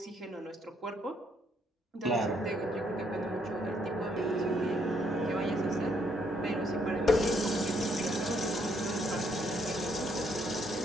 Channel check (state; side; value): normal; both; correlation 0.71